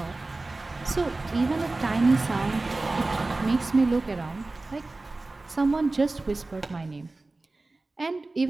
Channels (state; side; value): quieter; left; 3.2 dB